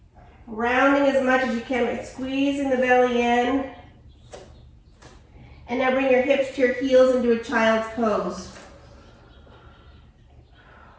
Rounding as much as you can, but squeezing the belly in. And now bring your hips to your heels into a child's pose.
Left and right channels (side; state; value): both; identical; correlation 1.00